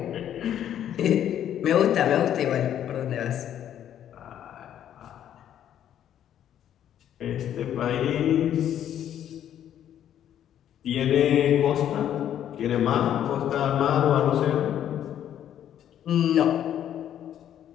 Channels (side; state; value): right; quieter; 10.5 dB